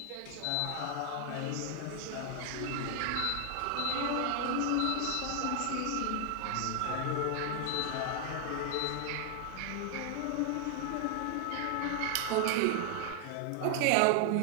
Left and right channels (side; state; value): both; different; correlation 0.00